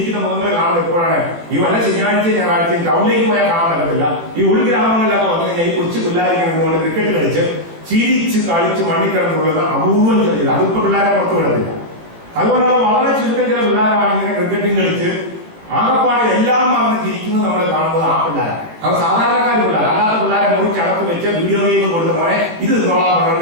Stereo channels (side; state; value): left; late; 18 ms